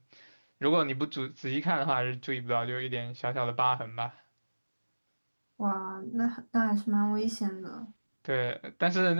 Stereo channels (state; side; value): inverted; both; correlation -1.00